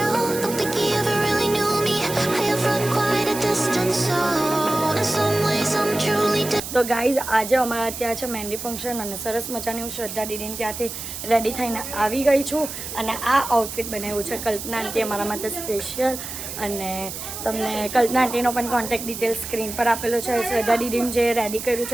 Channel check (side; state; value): right; noise; hiss, 8 dB below the sound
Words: તો ગાઈઝ, આજે અમારા ત્યાં છે મહેંદી ફંક્શન, અને સરસ મજાની હું શ્રદ્ધા દીદીને ત્યાંથી રેડી થઈને આવી ગઈ છું. અને આ આઉટફિટ બનાવ્યું છે કલ્પના આંટી અમારા માટે સ્પેશિયલ. અને તમને કલ્પના આંટીનો પણ કોન્ટેક્ટ ડિટેલ સ્ક્રીન પર આપેલો છે. શ્રદ્ધા દીદીને જે રેડી કર્યું